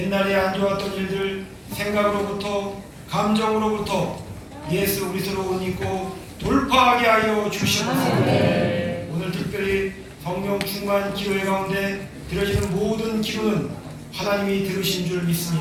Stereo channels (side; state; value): both; identical; correlation 1.00